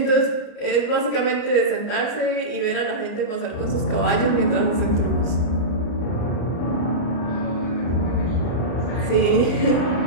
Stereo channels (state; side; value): late; right; 33 ms